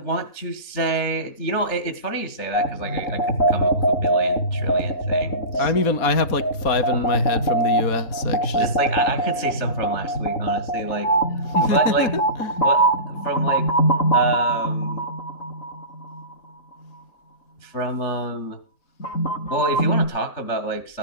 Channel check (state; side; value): late; right; 4.1 ms